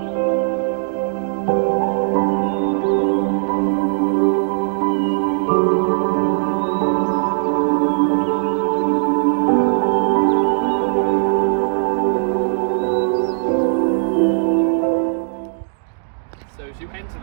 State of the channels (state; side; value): silent; left; digital silence